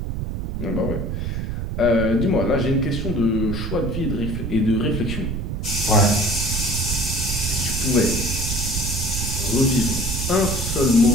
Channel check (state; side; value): noise; right; rumble, 3 dB below the sound